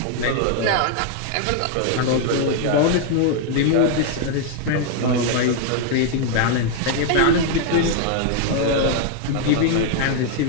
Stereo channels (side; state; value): both; different; correlation 0.00